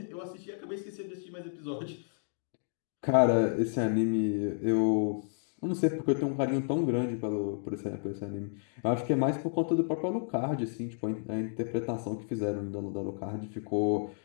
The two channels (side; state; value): right; silent; digital silence